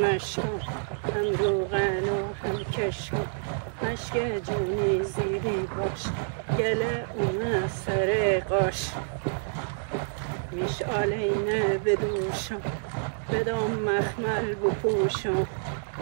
مشک جونی زیدی باش گله اون سر قاش مشعلینه بدوشم بدم مخمل بپوشم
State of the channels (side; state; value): left; silent; digital silence